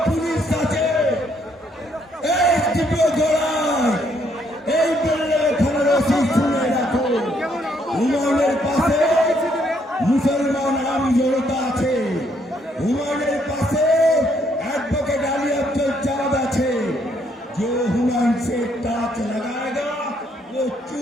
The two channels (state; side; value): normal; both; correlation 0.71